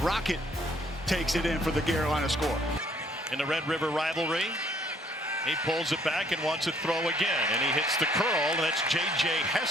Rocket takes it in for the Carolina score. In the Red River rivalry, he pulls it back and wants to throw again, and he hits the curl, and that's J.J.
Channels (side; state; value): both; normal; correlation 0.64